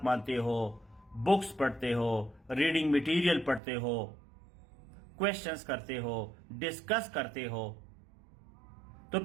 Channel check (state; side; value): drops out; left; at 3.6 s